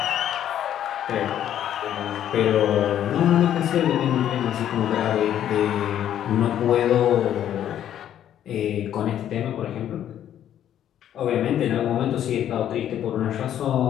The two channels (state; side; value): quieter; right; 10.7 dB